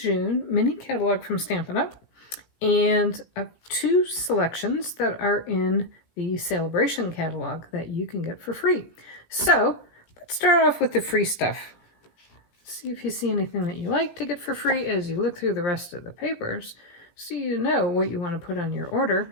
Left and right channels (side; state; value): right; late; 17 ms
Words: mini catalog from Stampin' Up! And two selections that are in the Sale-a-bration catalog that you can get for free. So let's start off with the free stuff. See if you see anything that you like to get for free as you look through the rest of the papers so you know what you want to put on your